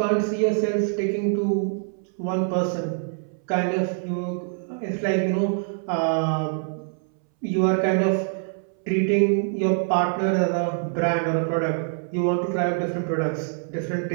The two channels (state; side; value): silent; left; 62 dB below the other